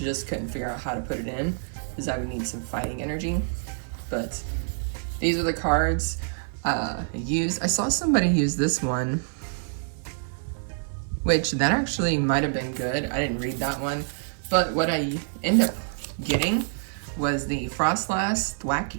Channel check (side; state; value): left; silent; 60 dB below the other